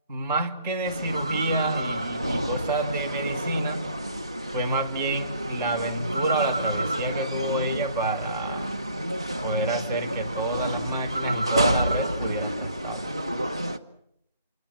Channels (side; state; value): both; inverted; correlation -0.59